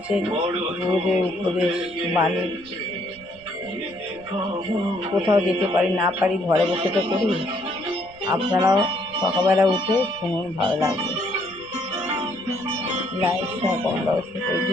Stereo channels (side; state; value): right; noise; rumble, 25 dB below the sound